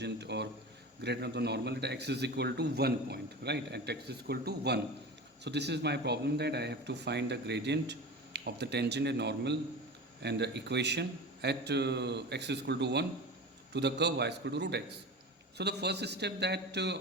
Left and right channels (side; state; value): both; normal; correlation 0.31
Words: or gradient of the normal at x is equal to 1 point, right? At x is equal to 1. So this is my problem, that I have to find the gradient of the tangent and normal and the equation at x is equal to 1 to the curve y is equal to root x. So the first step, that